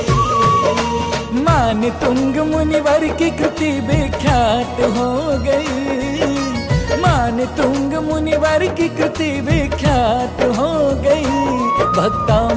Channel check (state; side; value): identical; both; correlation 1.00